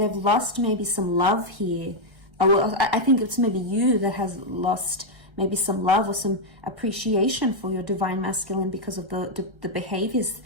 lost maybe some love here. Well, I think it's maybe you that has lost maybe some love or some appreciation for your divine masculine because of the behaviors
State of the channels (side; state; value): left; late; 1.3 ms